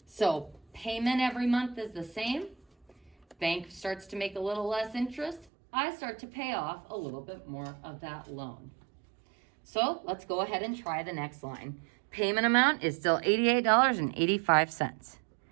So payment every month is the same. bank starts to make a little less interest, I start to pay off a little bit more of that loan. So let's go ahead and try the next line. Payment amount is still $88.85.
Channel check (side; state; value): left; drops out; at 5.5 s